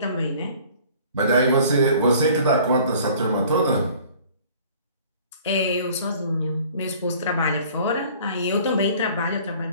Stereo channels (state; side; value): inverted; both; correlation -0.51